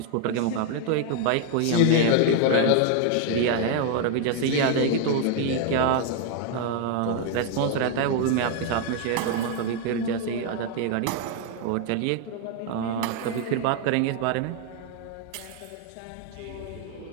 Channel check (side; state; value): both; different; correlation 0.00